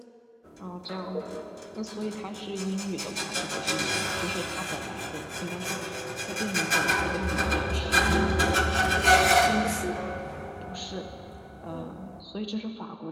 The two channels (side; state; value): both; identical; correlation 1.00